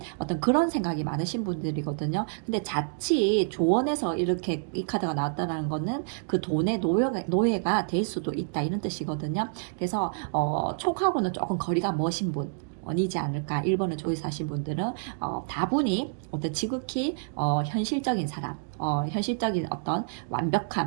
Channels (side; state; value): left; silent; digital silence